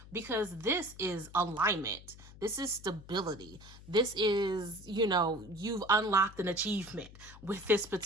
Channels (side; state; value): left; noise; hum, 18 dB below the sound